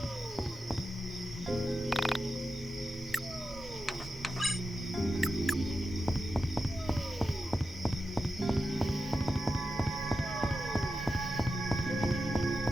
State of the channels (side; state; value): both; normal; correlation 0.90